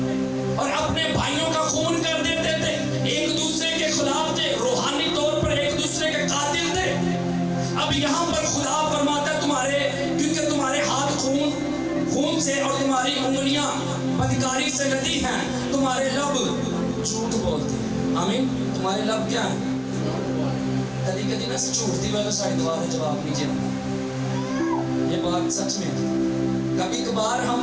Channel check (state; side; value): identical; both; correlation 1.00